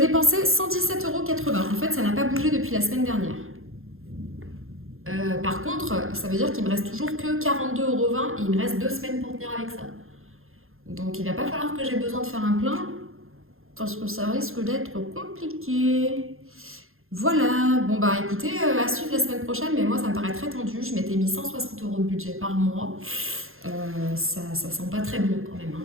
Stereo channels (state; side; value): late; left; 0.61 ms